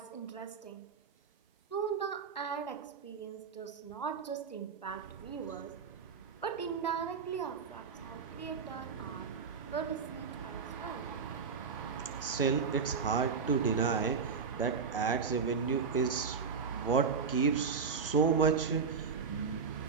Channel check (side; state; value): left; quieter; 5.6 dB